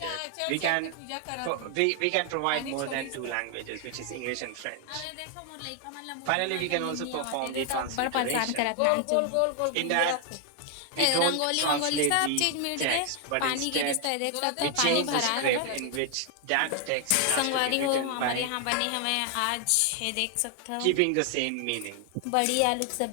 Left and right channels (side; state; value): both; different; correlation 0.00